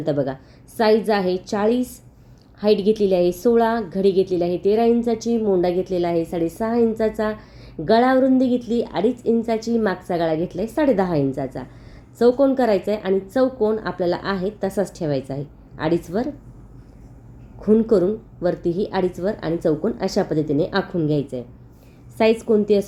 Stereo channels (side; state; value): both; identical; correlation 1.00